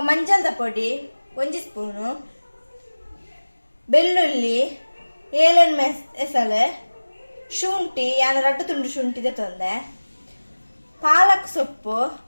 ಮಂಜಲ್ದ ಪೊಡಿ 1 ಸ್ಪೂನು ಬೆಳ್ಳುಳ್ಳಿ ಏಲನ್ ಎಸಲೆ ಶುಂಠಿ ಯಾನ 2 ತುಂಡು ಶುಂಠಿದ ತೊಂದೆ ಪಾಲಕ್ ಸೊಪ್ಪು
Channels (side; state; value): both; inverted; correlation -1.00